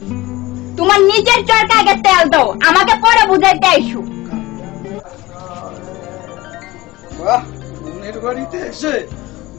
তোমার নিজের চরকা আগে তেল দাও, আমাকে পরে বুঝাইতে আইসো। বাহ, বোনের বাড়িতে এসে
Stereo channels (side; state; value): right; quieter; 19.3 dB